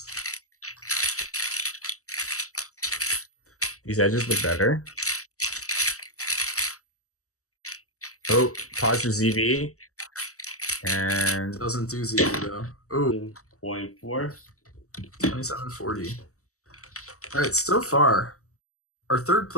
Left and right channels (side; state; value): right; late; 0.65 ms